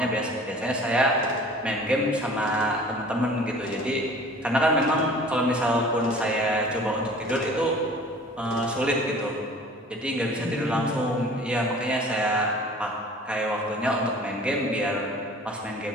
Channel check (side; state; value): both; normal; correlation 0.46